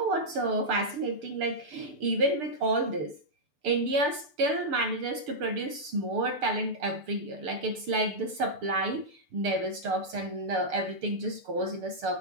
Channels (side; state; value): left; late; 6.8 ms